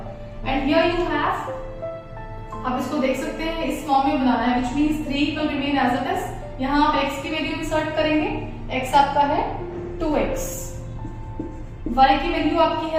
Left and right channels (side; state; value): both; identical; correlation 1.00